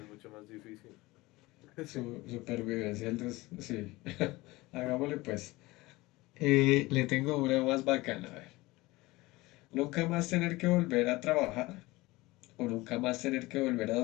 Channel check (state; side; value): quieter; right; 20.7 dB